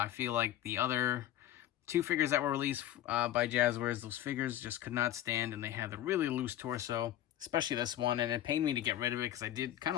feel like the other two figures that were released by Jazwares, those figures just could not stand, and they had the really loose torso, especially this one, and it pained me to get rid of it because I did kind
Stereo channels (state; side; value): quieter; right; 12.6 dB